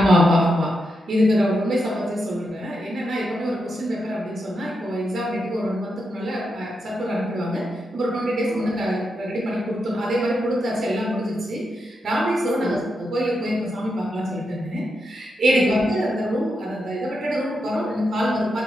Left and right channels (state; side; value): normal; both; correlation 0.85